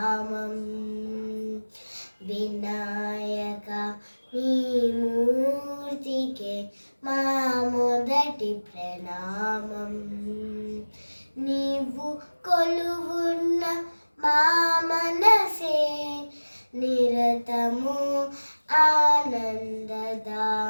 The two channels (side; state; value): both; inverted; correlation -1.00